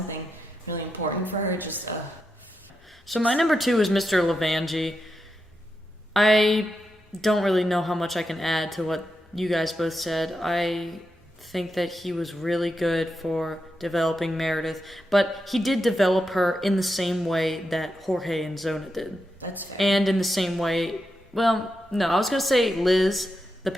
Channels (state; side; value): normal; both; correlation 0.86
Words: really important for her, just So my number 2 is Mr. Levangie. I don't really know how much I can add to what you guys both said. I think that he was really good for developing Meredith, but he did develop her in the same way that Jorge and Zona did. That's fair. And in the same way, well, no, I was going to say Liz, the